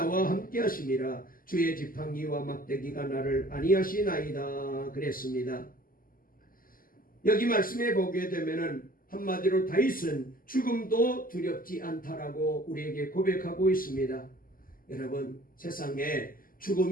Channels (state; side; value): late; right; 0.41 ms